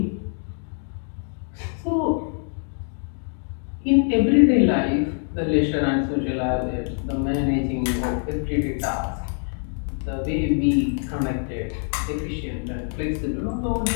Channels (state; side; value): silent; right; 58 dB below the other